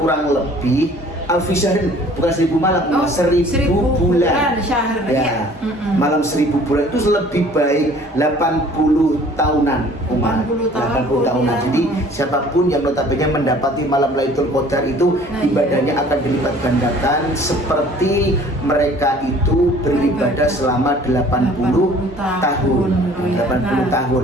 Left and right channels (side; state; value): both; normal; correlation 0.52